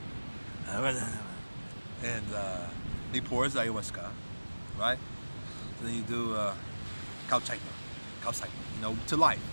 he pours ayahuasca, right? So then you do kauchaita, you know, to life,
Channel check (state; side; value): inverted; both; correlation -1.00